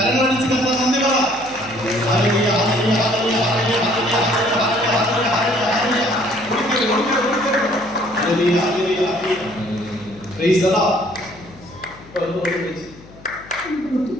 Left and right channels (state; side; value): noise; left; hum, 21 dB below the sound